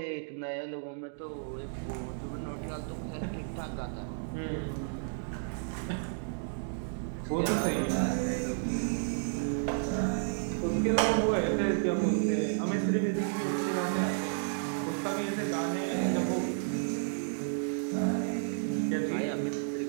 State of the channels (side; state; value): left; silent; digital silence